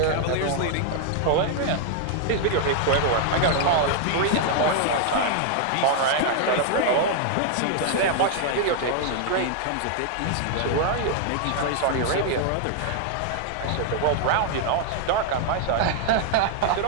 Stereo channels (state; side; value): different; both; correlation 0.00